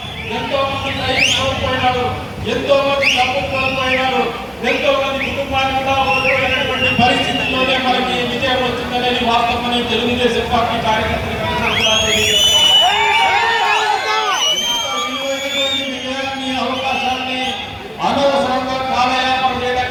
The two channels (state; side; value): identical; both; correlation 1.00